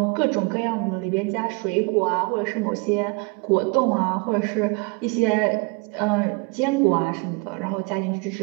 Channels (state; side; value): quieter; left; 29.9 dB